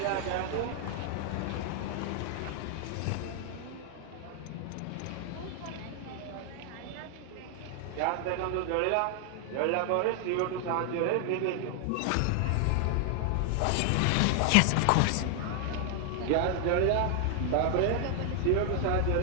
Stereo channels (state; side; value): different; both; correlation 0.00